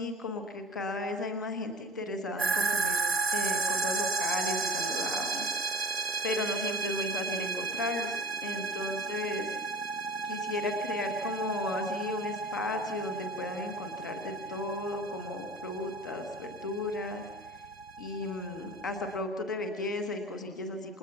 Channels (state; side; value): normal; both; correlation 0.40